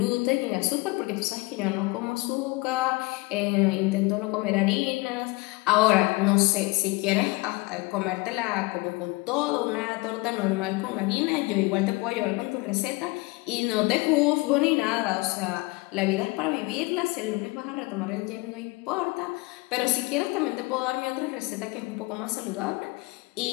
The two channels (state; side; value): quieter; right; 24.2 dB